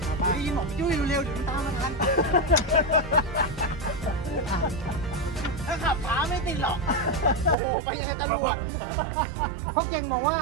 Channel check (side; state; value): left; drops out; at 7.6 s